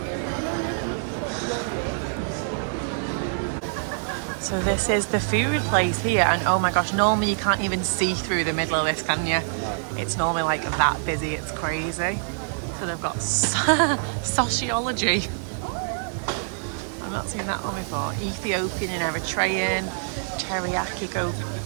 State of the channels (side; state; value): left; silent; digital silence